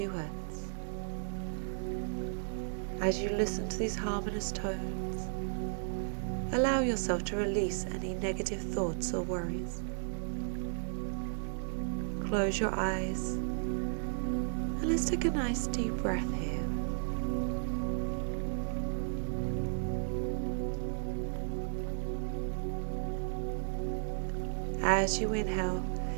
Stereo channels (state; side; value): silent; left; digital silence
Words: Hz. As you listen to these harmonious tones, allow yourself to release any negative thoughts or worries. Close your eyes and let's take a nice deep breath here. As you inhale,